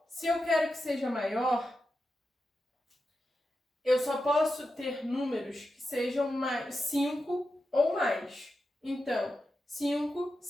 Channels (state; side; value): normal; both; correlation 0.89